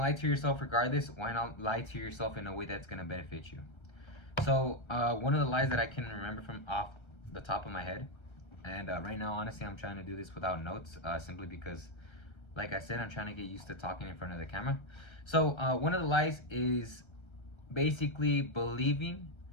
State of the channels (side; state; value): right; late; 1.3 ms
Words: to yourself regardless, why not lie to yourself in a way that's going to benefit you? So one of the lies that I can remember from off the top of my head, and right now, honestly, I'm trying to do this without notes, simply because, like I said, I'm trying to get used to talking in front of the camera. So one of the lies is basically believing